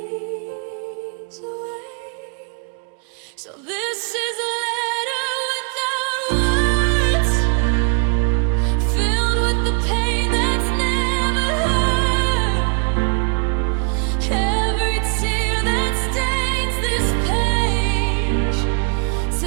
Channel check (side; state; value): left; quieter; 37.7 dB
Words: away. So this is a letter without words, filled with the pain that's never heard. Every tear that stains this page